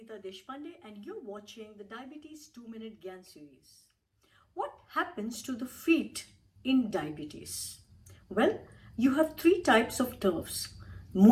Deshpande and you're watching the Diabetes 2-Minute GYAAN series. What happens to the feet in diabetes? Well, you have three types of nerves:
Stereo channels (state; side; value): identical; both; correlation 1.00